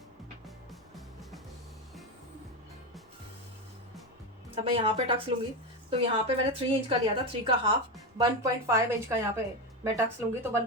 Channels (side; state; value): both; normal; correlation 0.14